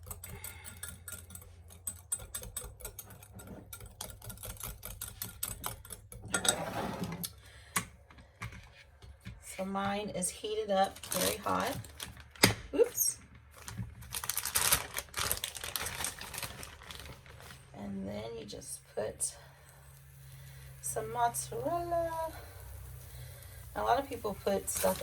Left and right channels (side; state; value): both; identical; correlation 1.00